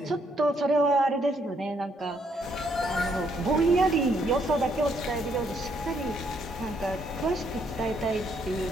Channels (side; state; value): both; normal; correlation 0.72